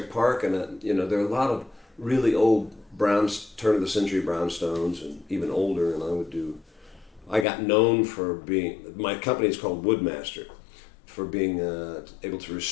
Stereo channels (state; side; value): drops out; right; at 7.5 s